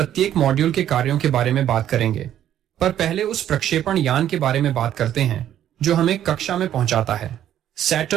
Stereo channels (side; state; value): left; quieter; 11.1 dB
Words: मॉड्यूल के कार्यों के बारे में बात करेंगे, पर पहले उस प्रक्षेपण यान के बारे में बात करते हैं जो हमें कक्षा में पहुंचाता है,